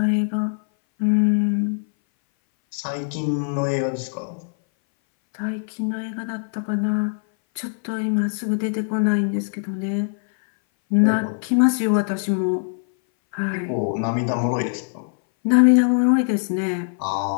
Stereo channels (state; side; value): silent; right; 60 dB below the other